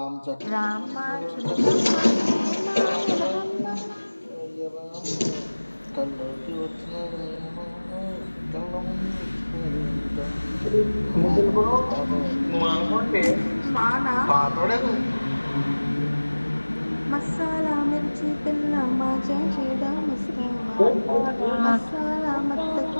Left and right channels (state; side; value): inverted; both; correlation -1.00